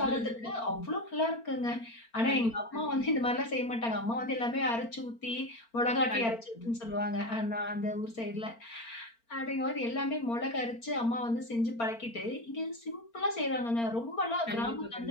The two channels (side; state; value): right; late; 4.4 ms